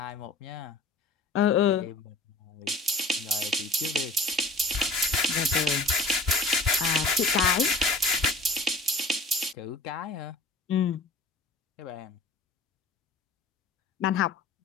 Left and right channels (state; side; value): quieter; right; 3.0 dB